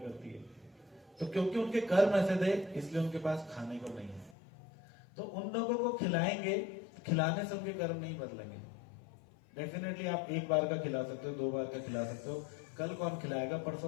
है। तो क्योंकि उनके कर्म ऐसे थे, इसलिए उनके पास खाने को नहीं है। तो उन लोगों को खिलाएंगे, खिलाने से उनके कर्म नहीं बदलेंगे। डेफिनेटली आप एक बार का खिला सकते हो, 2 बार का खिला सकते हो, कल कौन खिलाएगा,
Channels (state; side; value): drops out; right; at 4.4 s